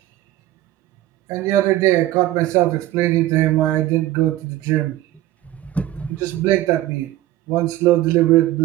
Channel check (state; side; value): quieter; left; 15.0 dB